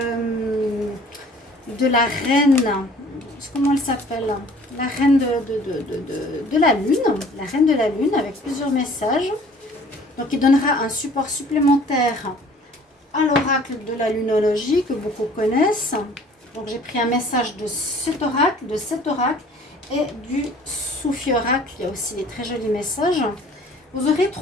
la reine, comment elle s'appelle, la reine de la lune, la reine de la lune avec plusieurs messages. Donc il donnera un support supplémentaire à l'oracle de la lunologie que beaucoup connaissent. Donc j'ai pris un message de cet oracle et du Soufi oracle. Il y a aussi des très jolis messages. Vous aurez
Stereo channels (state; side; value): normal; both; correlation 0.52